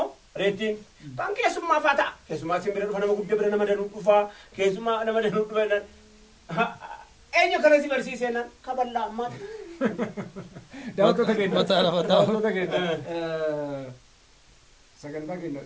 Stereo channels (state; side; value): identical; both; correlation 1.00